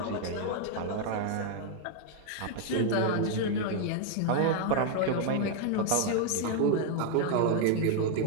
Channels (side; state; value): both; different; correlation 0.00